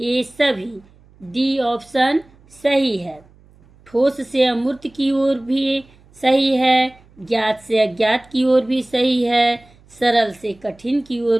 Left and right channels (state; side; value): noise; right; hum, 28 dB below the sound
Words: सभी। डी ऑप्शन सही है। ठोस से अमूर्त की ओर भी सही है, ज्ञात से अज्ञात की ओर भी सही है, सरल से कठिन की